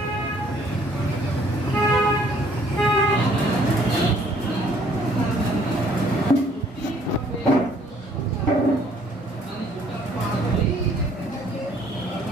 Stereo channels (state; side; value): normal; both; correlation 0.61